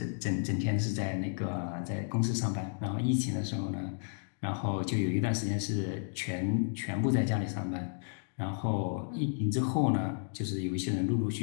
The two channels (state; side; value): silent; right; digital silence